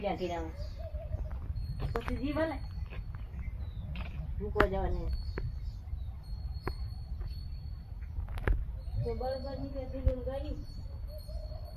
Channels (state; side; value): identical; both; correlation 1.00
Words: કીરા હોય પછી જીવ આલે મૂકવા જવાની તો બળબર ની કે દીધું ગાડી